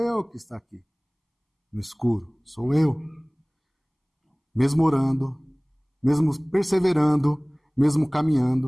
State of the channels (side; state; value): both; identical; correlation 1.00